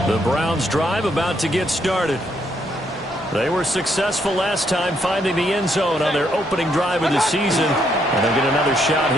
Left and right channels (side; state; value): both; normal; correlation 0.73